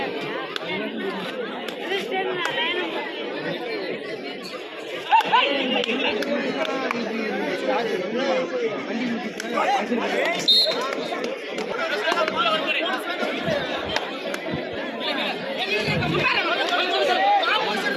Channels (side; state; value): both; identical; correlation 1.00